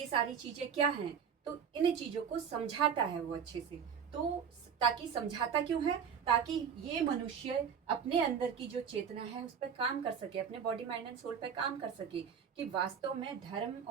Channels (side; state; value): left; quieter; 7.3 dB